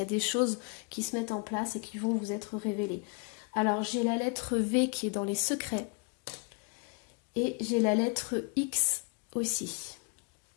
y a des choses qui se mettent en place et qui vont vous être révélées. Alors, j'ai la lettre V qui est dans les secrets et j'ai la lettre X aussi.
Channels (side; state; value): right; quieter; 36.0 dB